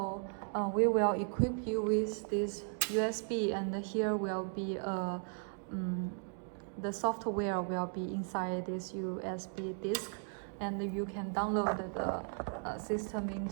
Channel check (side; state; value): left; silent; 54 dB below the other